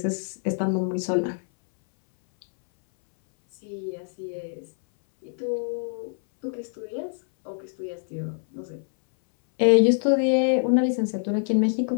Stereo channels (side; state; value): right; silent; 62 dB below the other